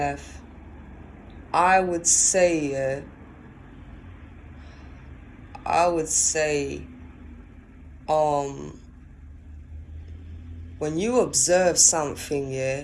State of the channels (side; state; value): both; identical; correlation 1.00